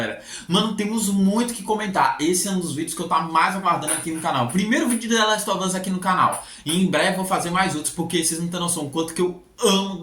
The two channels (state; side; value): identical; both; correlation 1.00